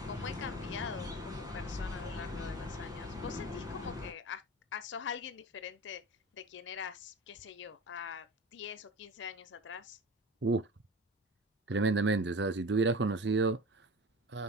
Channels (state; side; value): normal; both; correlation 0.34